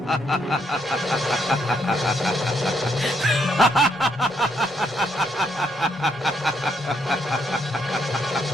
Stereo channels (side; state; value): both; normal; correlation 0.74